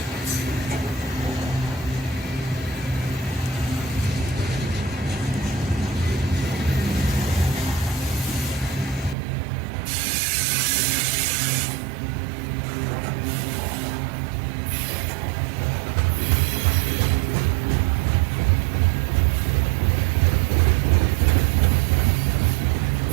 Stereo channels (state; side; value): drops out; left; at 9.2 s